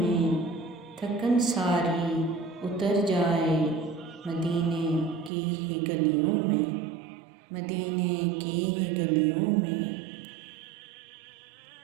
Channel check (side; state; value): left; drops out; at 5.3 s